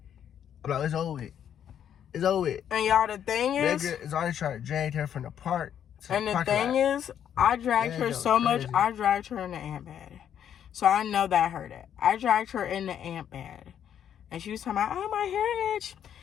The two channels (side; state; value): right; quieter; 9.4 dB